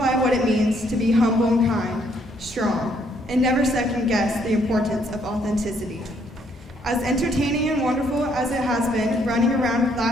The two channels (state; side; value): normal; both; correlation 0.69